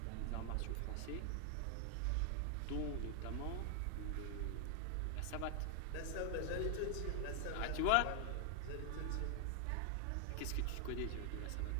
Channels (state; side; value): different; both; correlation 0.00